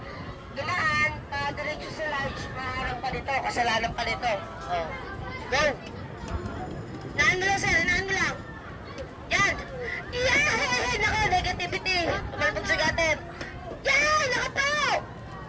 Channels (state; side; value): identical; both; correlation 1.00